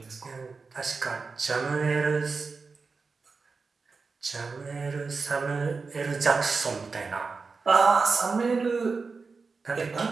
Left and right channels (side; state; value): left; quieter; 4.5 dB